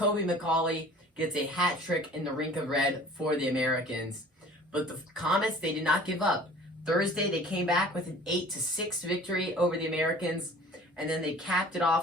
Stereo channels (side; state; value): both; normal; correlation 0.47